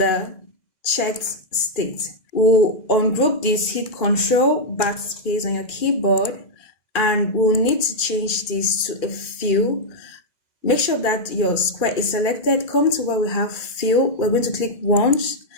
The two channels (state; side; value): late; right; 2.4 ms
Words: checked state. We'll ungroup this, hit Control backspace on your keyboard, and we'll need to change this to a fill. Make sure that your square is selected. Come to where we have fill. We're going to click once,